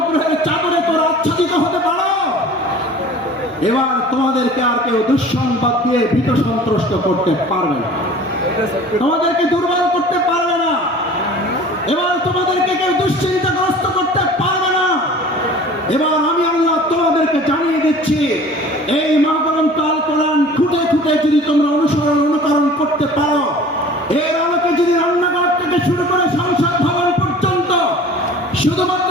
চাদরে তোমরা আচ্ছাদিত হতে পারো, এবার তোমাদেরকে আর কেউ দুঃসংবাদ দিয়ে ভীত সন্ত্রস্ত করতে পারবে না, তোমাদেরকে দুর্বল করতে পারবে না, এবার তোমাদেরকে কেউ দুশ্চিন্তাগ্রস্ত করতে পারবে না। এবার আমি আল্লাহ তোমাদেরকে জানিয়ে দিচ্ছি, এই মহাগ্রন্থ আল কোরআন খুঁটে খুঁটে যদি তোমরা অনুকরণ করতে পারো, এর আলোকে যদি রান্নাঘর থেকে শুরু করে সংসদ ভবন পর্যন্ত শুধুমাত্র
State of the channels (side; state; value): both; normal; correlation 0.44